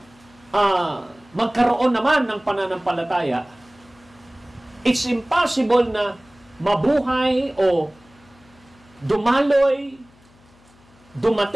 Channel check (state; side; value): noise; left; hum, 29 dB below the sound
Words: magkaroon naman ng pananampalataya. It's impossible na mabuhay o dumaloy,